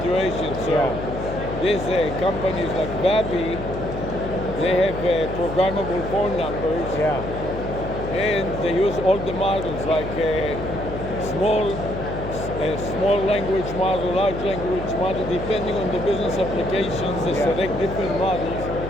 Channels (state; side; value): noise; left; hum, 7 dB below the sound